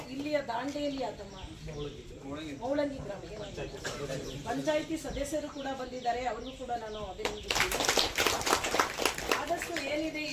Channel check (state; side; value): identical; both; correlation 1.00